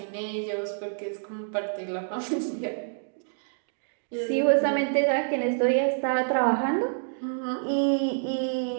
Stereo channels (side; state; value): left; silent; digital silence